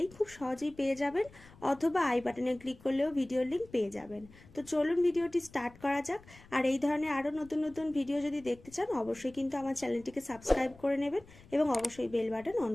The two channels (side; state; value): left; noise; rumble, 23 dB below the sound